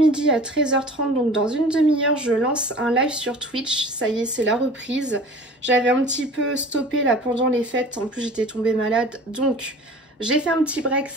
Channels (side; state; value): both; normal; correlation 0.43